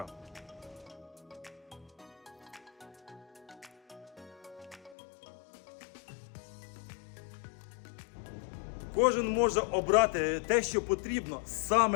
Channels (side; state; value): right; drops out; at 5.0 s